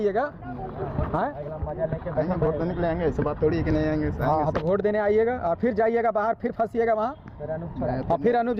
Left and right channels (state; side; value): identical; both; correlation 1.00